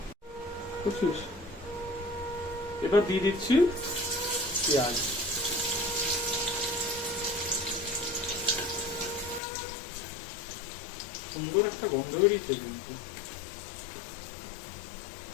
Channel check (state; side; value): drops out; right; at 9.4 s